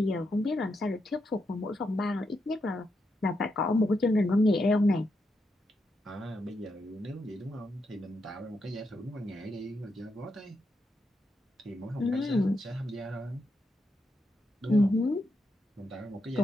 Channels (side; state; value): both; normal; correlation 0.83